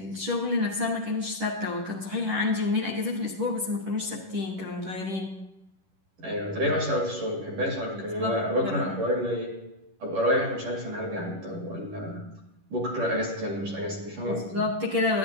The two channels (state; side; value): late; left; 10 ms